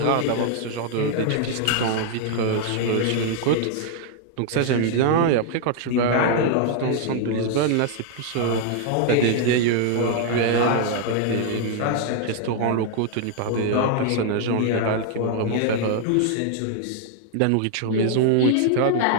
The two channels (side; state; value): both; different; correlation 0.00